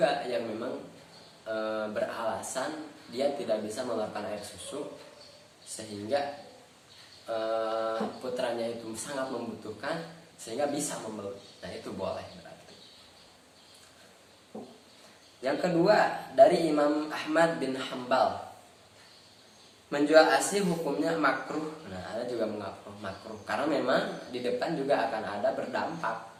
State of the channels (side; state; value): both; identical; correlation 1.00